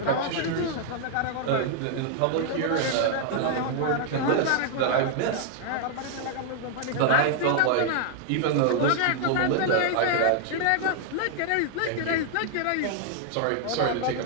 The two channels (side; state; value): both; different; correlation 0.00